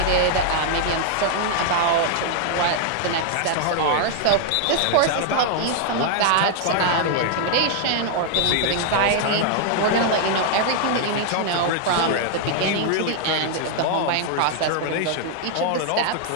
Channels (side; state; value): both; different; correlation 0.00